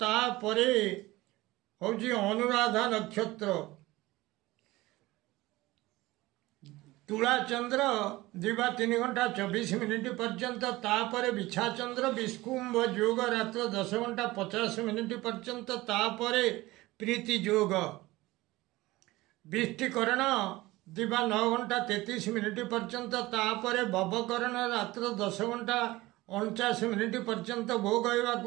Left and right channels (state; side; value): quieter; left; 19.3 dB